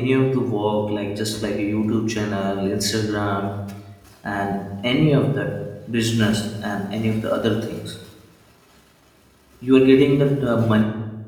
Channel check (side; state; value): both; identical; correlation 1.00